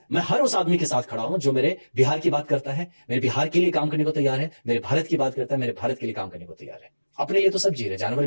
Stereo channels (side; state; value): both; inverted; correlation -1.00